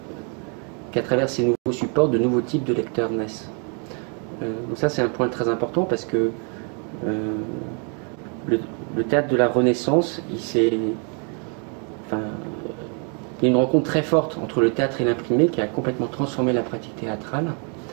travers ces nouveaux supports, de nouveaux types de lecteurs naissent. Donc ça, c'est un point très important parce que le théâtre de la Renaissance, il y a une rencontre très forte entre le théâtre et l'imprimé qui a complètement transformé la pratique théâtrale,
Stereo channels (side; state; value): left; quieter; 38.8 dB